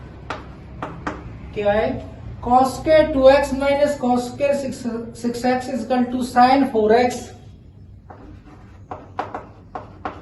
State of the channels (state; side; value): identical; both; correlation 1.00